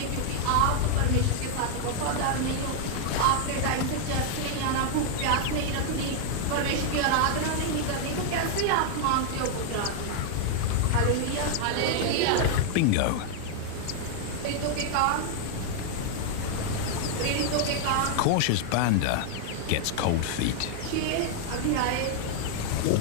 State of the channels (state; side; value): different; both; correlation 0.00